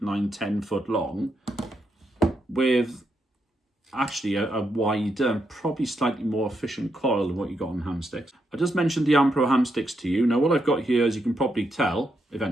9, 10 foot long, with actually a wider and probably slightly more efficient coil than what you got on ham sticks. I just mentioned the Ampro ham sticks to you. Now what I've got here, as you can probably tell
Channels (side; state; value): both; normal; correlation 0.81